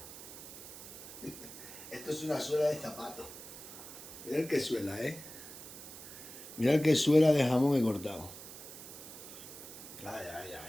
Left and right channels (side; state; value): right; noise; hiss, 13 dB below the sound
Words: Esto es una suela de zapato. Mirad qué suela, ¿eh? Mirad qué suela de jamón he cortado. Ay, ay,